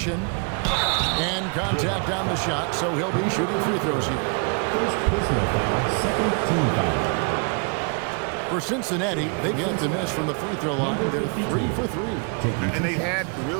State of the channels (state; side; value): quieter; left; 37.4 dB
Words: And contact on the shot, so he'll be shooting free throws here. First personal foul, second team foul. For Cincinnati, they've yet to miss from the free throw line. They're 3 for 3. And they've had